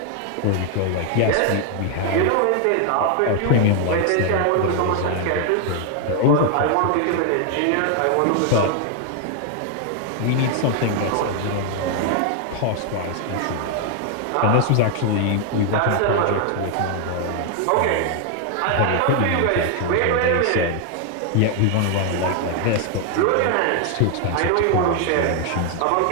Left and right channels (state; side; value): different; both; correlation 0.00